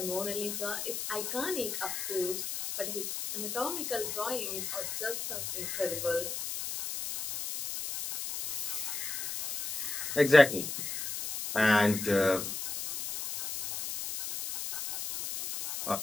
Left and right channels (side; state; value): left; noise; hiss, 4 dB below the sound